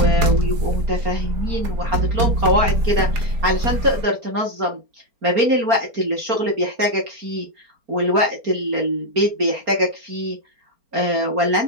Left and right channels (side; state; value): left; late; 4.4 ms